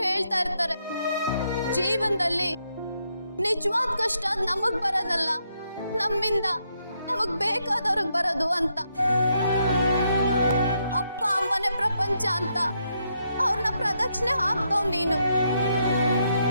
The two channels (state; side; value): inverted; both; correlation -0.78